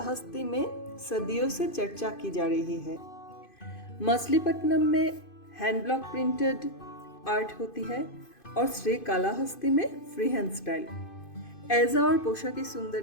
में सदियों से चर्चा की जा रही है। मछलीपट्टनम में हैंड ब्लॉक प्रिंटेड आर्ट होती है और श्रीकालाहस्ती में फ्री हैंड स्टाइल। ऐजा और पोशाकी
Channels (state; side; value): late; right; 2.5 ms